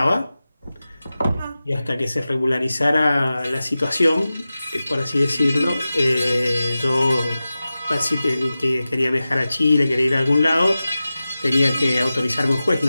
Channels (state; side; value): inverted; both; correlation -0.95